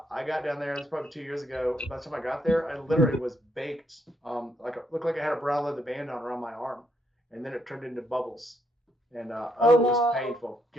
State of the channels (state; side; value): normal; both; correlation 0.74